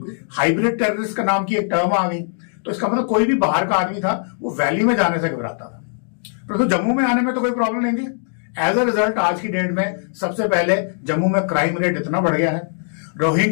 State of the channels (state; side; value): silent; right; digital silence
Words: हाइब्रिड टेररिस्ट का नाम की एक टर्म आ गई। तो इसका मतलब कोई भी बाहर का आदमी था वो वैली में जाने से घबराता था, परंतु तो जम्मू में आने में तो कोई प्रॉब्लम नहीं थी। एज अ रिजल्ट आज की डेट में सबसे पहले जम्मू में क्राइम रेट इतना बढ़ गया है,